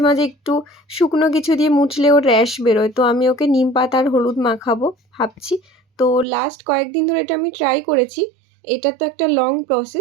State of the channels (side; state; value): left; drops out; at 6.2 s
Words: মাঝে একটু শুকনো কিছু দিয়ে মুছলে ওর র্যাশ বেরোয়। তো আমি ওকে নিম পাতা আর হলুদ মাখাবো ভাবছি। তো লাস্ট কয়েকদিন ধরে এটা আমি ট্রাই করেছি। এটা তো একটা লং